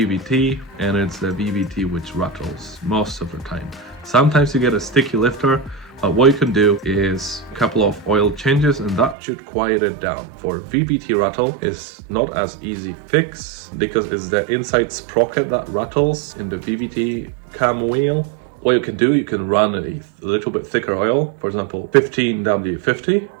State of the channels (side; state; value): left; drops out; at 9.2 s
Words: and it's the VVT which rattles most of the time. Sometimes you get a sticky lifter, but what you can do is a couple of oil changes and that should quiet it down. For VVT rattle is not as easy fix, because it's the inside sprocket that rattles in the VVT cam wheel. What you can do, you can run a little bit thicker oil, for example